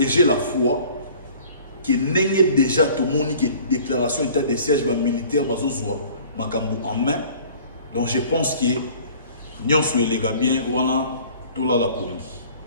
j'ai la foi qui n'est déjà tout le monde qui est déclaration état de siège militaire en main. Donc je pense que nous sommes les gars bien, on a tout là la police.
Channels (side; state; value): both; inverted; correlation -0.49